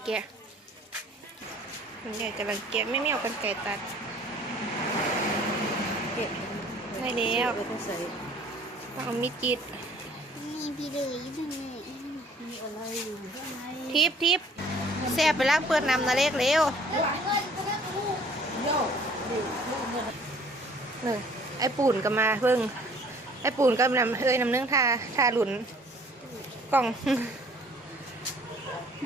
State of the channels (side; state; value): both; normal; correlation 0.55